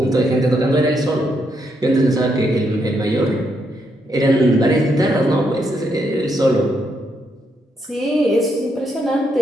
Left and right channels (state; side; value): normal; both; correlation 0.78